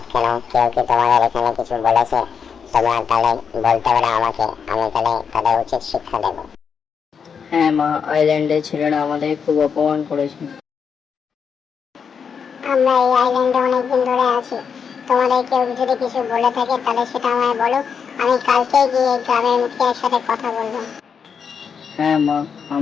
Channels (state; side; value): quieter; right; 6.6 dB